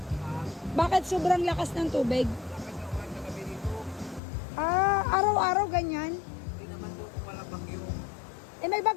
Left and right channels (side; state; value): right; drops out; at 4.2 s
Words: Bakit sobrang lakas ng tubig? Lakas na ulan na gabi dito. Ah, araw-araw ganyan? Hindi naman po kung walang bagyo. Eh, may